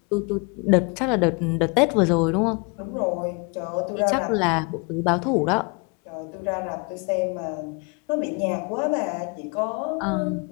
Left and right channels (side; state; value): right; quieter; 32.5 dB